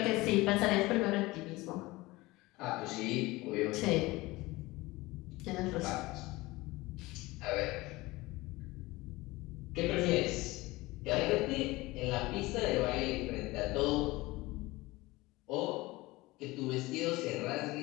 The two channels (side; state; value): right; quieter; 20.7 dB